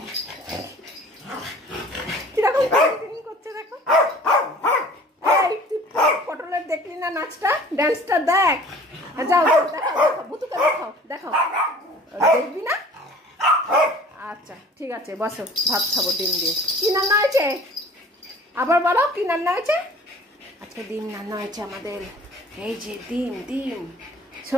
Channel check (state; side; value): normal; both; correlation 0.48